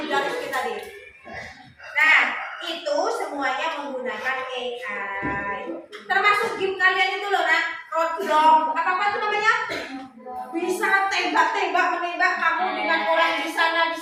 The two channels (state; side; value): identical; both; correlation 1.00